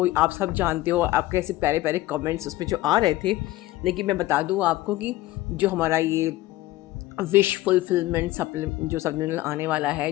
आप सब जानते हो, आपके ऐसे प्यारे प्यारे कमेंट्स उसमें जो आ रहे थे। लेकिन मैं बता दूँ आपको कि जो हमारा ये विश फुलफिलमेंट जो सप्लीमेंटल आने वाला है,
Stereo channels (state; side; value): quieter; right; 16.7 dB